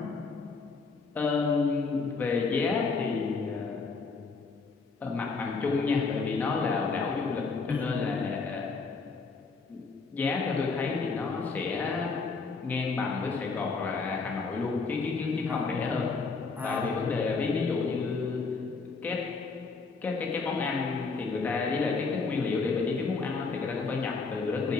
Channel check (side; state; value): right; quieter; 4.4 dB